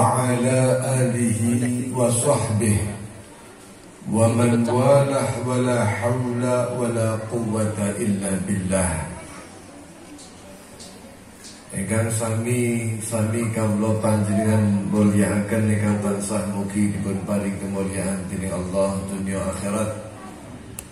ala alihi wa sahbihi wa man walah wa la hawla wa la quwwata illa billah. Ingkang sami kawula panjenengan mulyakaken ingkang tansah mugi dipun paring kemuliaan dening Allah dunya akhirat.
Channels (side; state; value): both; identical; correlation 1.00